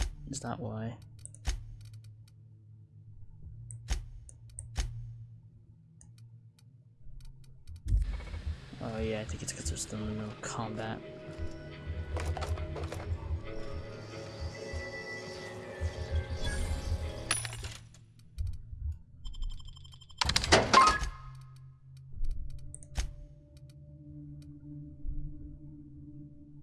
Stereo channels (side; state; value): both; identical; correlation 1.00